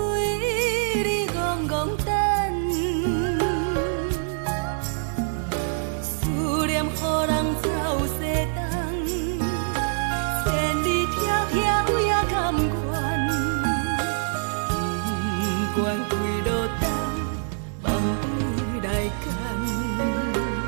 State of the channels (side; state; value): left; silent; 59 dB below the other